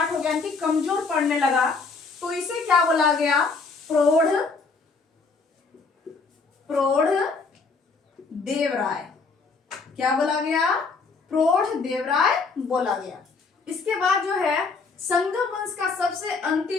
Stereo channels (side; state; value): right; quieter; 4.4 dB